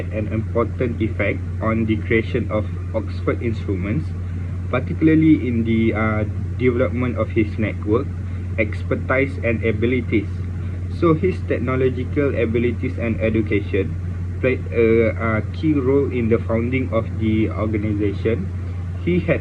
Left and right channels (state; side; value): identical; both; correlation 1.00